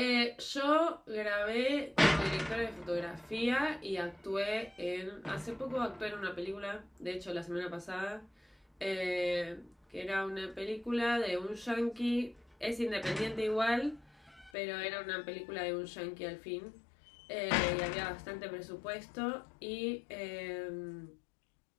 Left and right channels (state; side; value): drops out; right; at 14.5 s